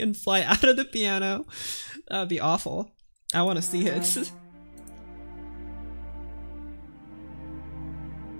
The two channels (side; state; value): both; inverted; correlation -1.00